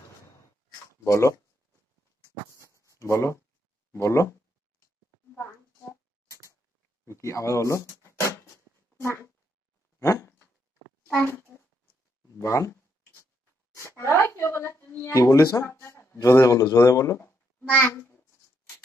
বলো বলো বলো, কি আবার বলো? হ্যাঁ, বান কি বলিস? জোরে বলো, জোরে বলো।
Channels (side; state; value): both; normal; correlation 0.77